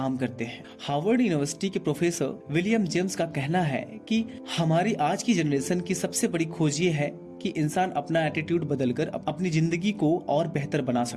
करते हैं। हार्वर्ड यूनिवर्सिटी के प्रोफेसर विलियम जेम्स का कहना है कि हमारी आज की जनरेशन की सबसे बड़ी खोज ये है कि इंसान अपना एटीट्यूड बदलकर अपनी जिंदगी को और बेहतर बना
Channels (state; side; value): identical; both; correlation 1.00